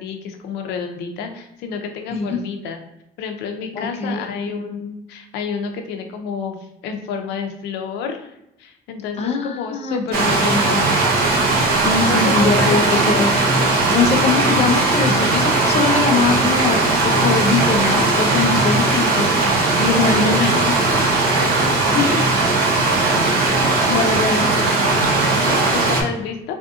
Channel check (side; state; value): both; normal; correlation 0.22